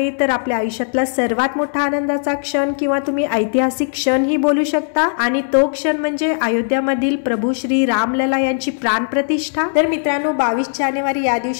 तर आपल्या आयुष्यातला सर्वात मोठा आनंदाचा क्षण किंवा तुम्ही ऐतिहासिक क्षण ही बोलू शकता, आणि तो क्षण म्हणजे अयोध्यामधील प्रभू श्री रामलला यांची प्राण प्रतिष्ठा। तर मित्रांनो 22 जानेवारी या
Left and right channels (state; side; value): silent; right; digital silence